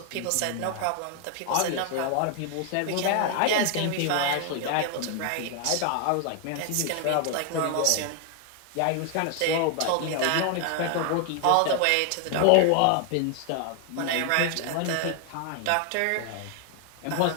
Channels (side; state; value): both; different; correlation 0.00